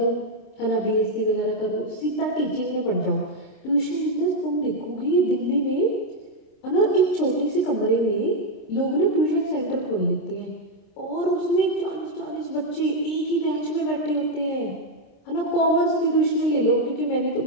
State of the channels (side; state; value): right; late; 26 ms